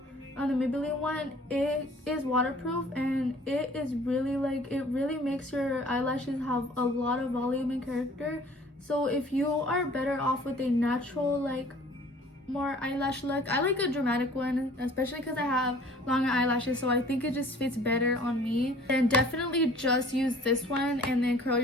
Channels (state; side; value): normal; both; correlation 0.51